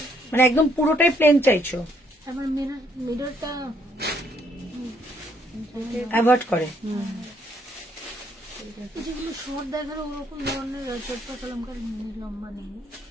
মানে একদম পুরোটাই প্লেন চাইছো? আবার মিররটা অ্যাভয়েড করে। যেগুলো শর্ট দেখার ওরকম ধরনের চটপা কলমকার লম্বা নেই।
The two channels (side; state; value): both; normal; correlation 0.69